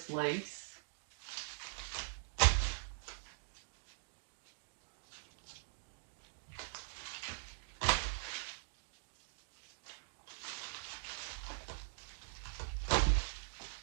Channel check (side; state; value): left; silent; digital silence